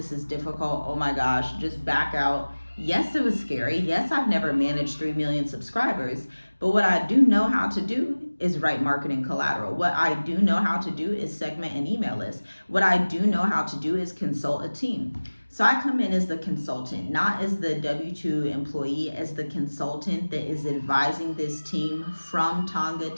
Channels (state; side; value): inverted; both; correlation -1.00